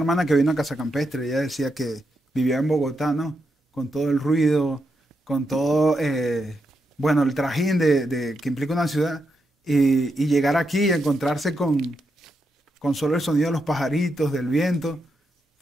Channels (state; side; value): normal; both; correlation 0.83